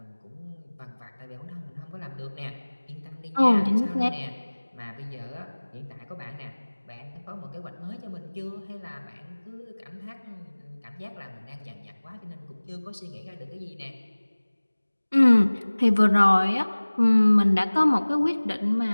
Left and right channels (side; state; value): both; inverted; correlation -1.00